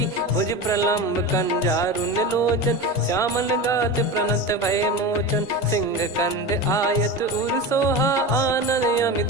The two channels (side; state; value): both; normal; correlation 0.25